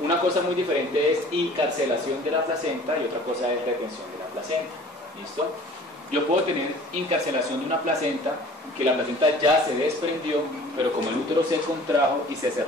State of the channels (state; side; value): normal; both; correlation 0.48